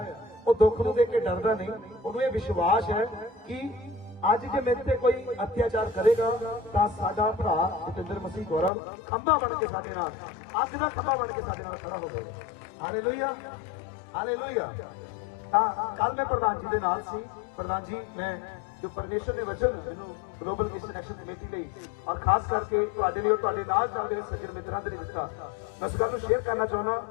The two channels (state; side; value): drops out; right; at 8.7 s